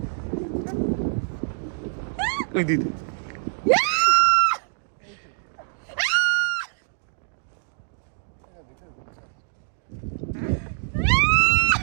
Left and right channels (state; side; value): silent; left; digital silence